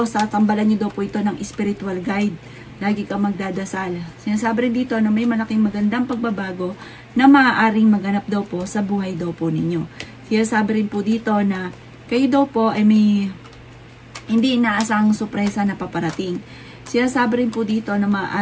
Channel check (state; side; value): identical; both; correlation 1.00